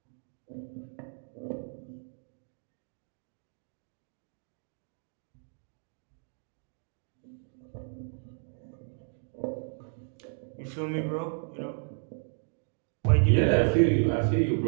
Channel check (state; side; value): silent; left; 56 dB below the other